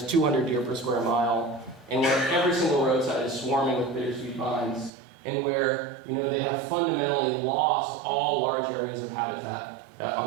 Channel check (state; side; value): drops out; left; at 4.9 s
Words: 200 deer per square mile, and where every single roadside is swarming with bittersweet vines, and where they have fundamentally lost all large areas of habitat